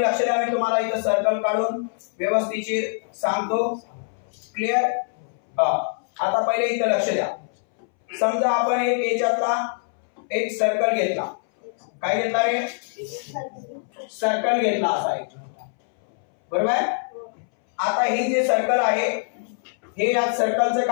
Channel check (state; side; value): silent; right; 63 dB below the other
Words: लक्ष द्या. मी तुम्हाला इथं सर्कल काढून व्यवस्थित सांगतो. क्लिअर. आता पहिले इथं लक्ष द्या. समजा आपण एक याच्यातला एक सर्कल घेतला. काय घेतला रे? सर्कल घेतला असा एक. बरोबर. आता हे जे सर्कल आहे हे या सर्कलचं